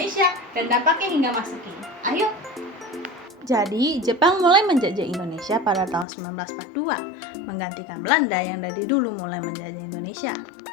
dan dampaknya hingga masa kini. Ayo. Jadi, Jepang mulai menjajah Indonesia pada tahun 1942, menggantikan Belanda yang dari dulu mulai menjajah Indonesia.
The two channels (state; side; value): drops out; right; at 6.1 s